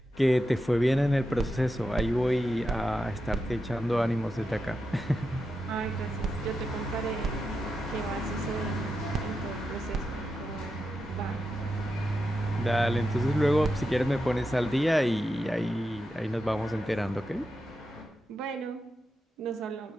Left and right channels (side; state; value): both; normal; correlation 0.88